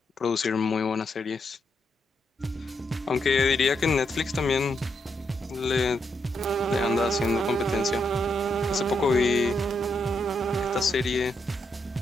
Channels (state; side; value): normal; both; correlation 0.80